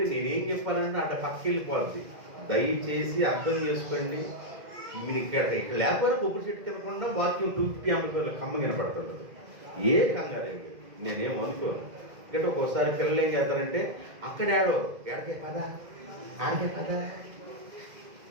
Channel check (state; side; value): late; left; 2.1 ms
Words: నేనేం చెప్పాలంటే అట్లా పక్కకి వెళ్ళిపోద్ది. దయచేసి అర్థం చేసుకోండి. మీరు ఇక్కడ లేకపోతే కొబ్బరి చెట్టు తినకుండా వాక్యం 250 ఆంపియర్ల కమ్మ వినపడుతుంది. ఏ కంగారు నేనేం అనుకోను. ఎందుకంటే ఒక్కోసారి పిల్లలు ఏం చేస్తారంటే అక్కడ ఎడకే పదా ఆడకే పదా,